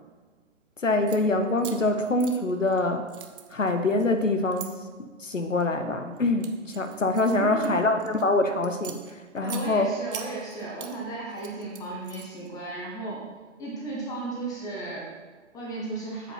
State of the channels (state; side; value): normal; both; correlation 0.19